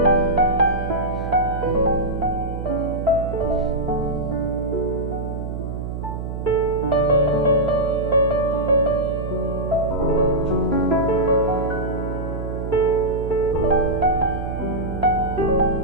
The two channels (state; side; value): noise; right; hum, 6 dB below the sound